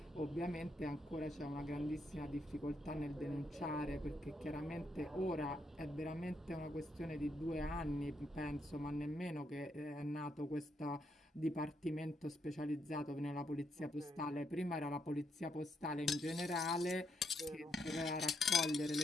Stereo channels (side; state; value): both; normal; correlation 0.77